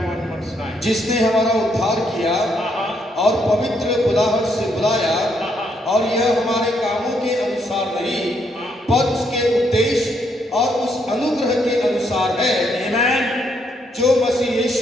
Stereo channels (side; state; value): both; normal; correlation 0.74